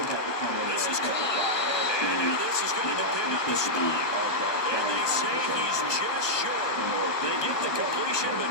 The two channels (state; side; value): late; right; 1.1 ms